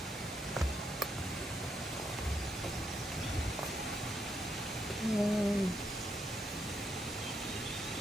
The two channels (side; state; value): both; normal; correlation 0.78